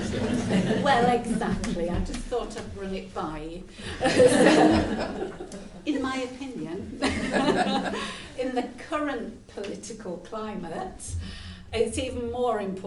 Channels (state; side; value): identical; both; correlation 1.00